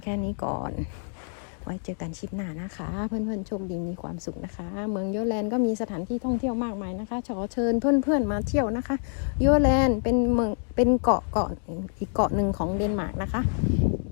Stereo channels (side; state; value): right; silent; 60 dB below the other